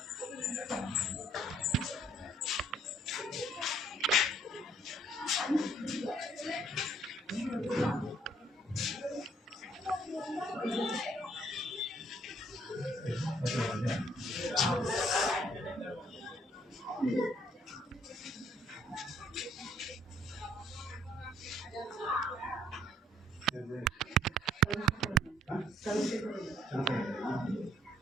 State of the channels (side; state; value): both; normal; correlation 0.64